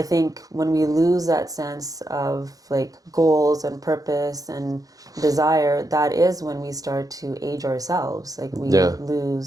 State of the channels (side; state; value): left; late; 0.17 ms